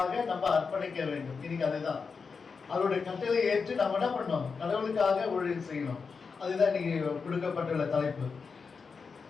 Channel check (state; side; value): quieter; right; 5.2 dB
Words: நம்ம அர்ப்பணிக்க வேண்டும். இன்னைக்கு அதுதான் அவருடைய கட்டளை ஏற்று நம்ம என்ன பண்ணோம், கடவுளுக்காக ஊழியம் செய்யணும். அதுதான் இன்னைக்கு கொடுக்கப்பட்டுள்ள தலைப்பு.